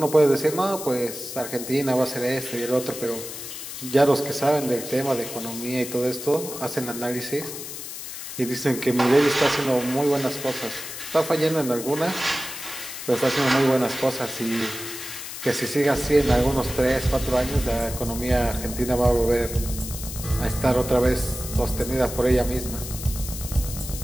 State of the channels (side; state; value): left; noise; hiss, 9 dB below the sound